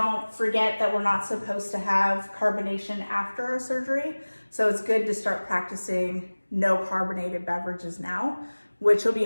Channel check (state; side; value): inverted; both; correlation -1.00